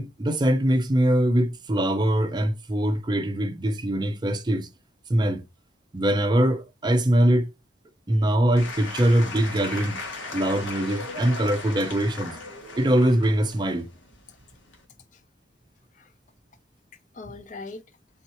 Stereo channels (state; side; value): normal; both; correlation 0.84